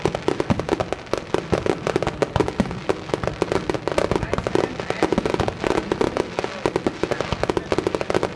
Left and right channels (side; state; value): both; identical; correlation 1.00